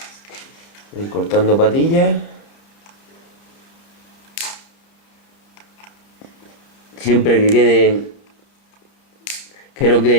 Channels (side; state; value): right; late; 31 ms